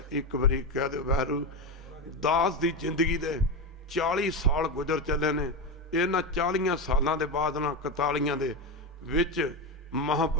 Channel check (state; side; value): normal; both; correlation 0.15